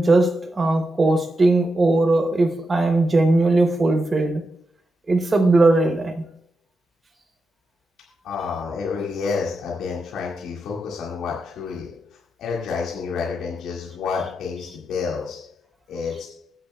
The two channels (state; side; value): normal; both; correlation 0.87